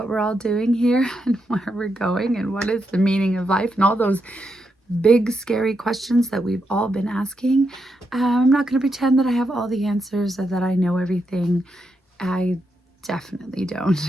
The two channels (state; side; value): normal; both; correlation 0.83